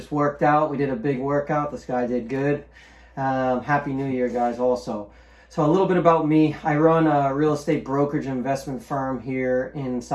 worked out. We did a big workout. This guy did good. Happy New Year, guys, also. So a little bit about me. I run a real estate brokerage investment firm here in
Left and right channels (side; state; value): both; identical; correlation 1.00